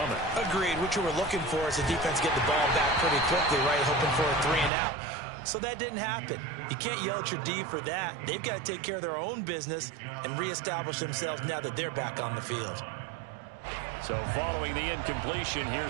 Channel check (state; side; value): drops out; left; at 4.7 s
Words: Agreed. What you were looking for is the defense getting the ball back pretty quickly, right? Hoping for a 3 and out. So that didn't happen. You can't yell at your D for that. They've got to take care of their own business and reestablish themselves now that they're back on the field. So following the incompletion,